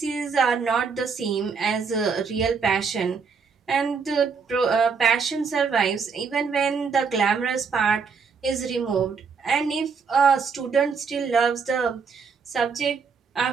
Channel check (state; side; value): quieter; left; 5.5 dB